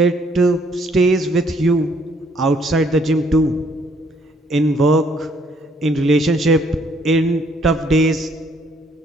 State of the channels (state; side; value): normal; both; correlation 0.65